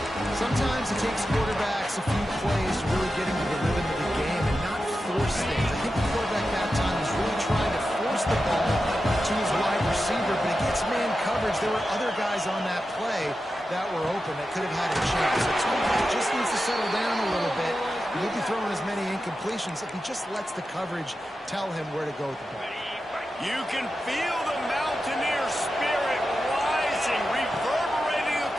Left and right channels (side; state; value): both; normal; correlation 0.91